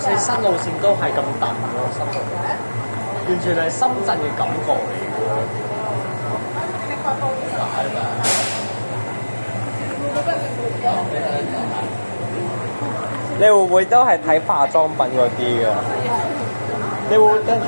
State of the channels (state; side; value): inverted; both; correlation -1.00